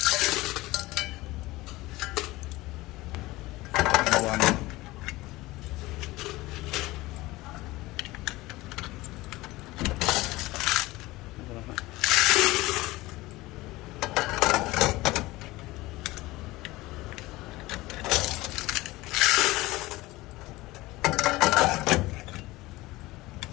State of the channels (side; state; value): right; quieter; 19.6 dB